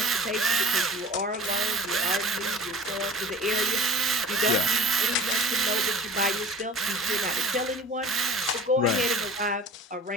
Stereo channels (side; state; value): both; normal; correlation 0.42